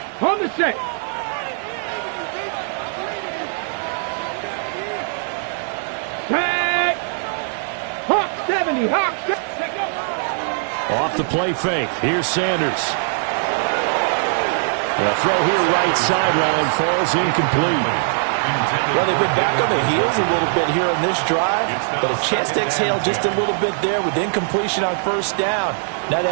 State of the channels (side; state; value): left; silent; digital silence